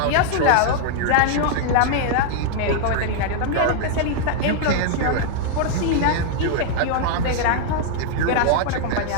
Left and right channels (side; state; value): both; different; correlation 0.00